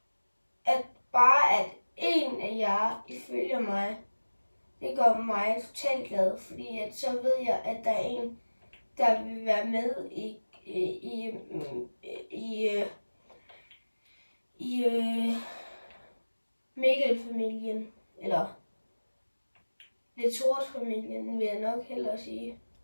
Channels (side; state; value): both; inverted; correlation -1.00